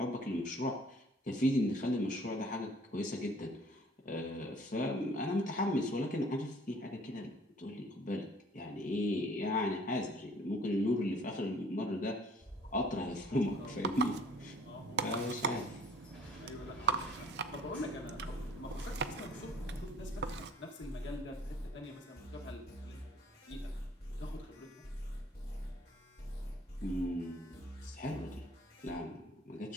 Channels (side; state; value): both; normal; correlation 0.55